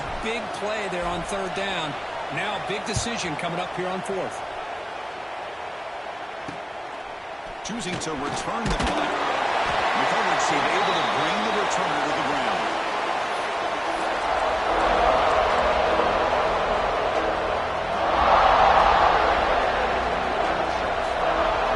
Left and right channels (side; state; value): both; identical; correlation 1.00